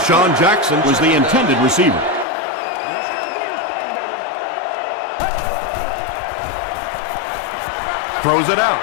Jackson was the intended receiver. Throws it out.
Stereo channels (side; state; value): right; drops out; at 2.2 s